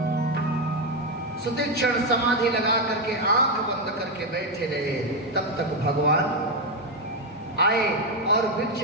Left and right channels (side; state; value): both; normal; correlation 0.06